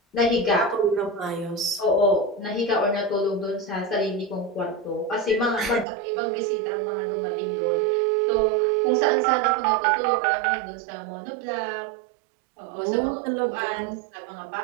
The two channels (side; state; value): left; drops out; at 5.9 s